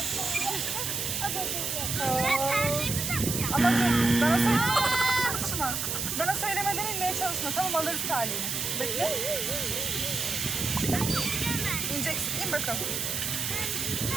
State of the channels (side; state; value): right; noise; hiss, 1 dB below the sound